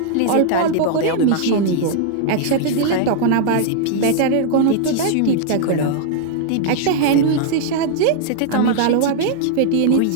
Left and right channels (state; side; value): different; both; correlation -0.01